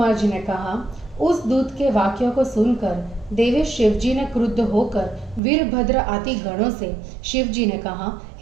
जी ने कहा, उस दूत के वाक्यों को सुनकर देवेश शिवजी ने क्रुद्ध होकर वीरभद्र आदि गणों से शिवजी ने कहा,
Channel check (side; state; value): left; drops out; at 5.4 s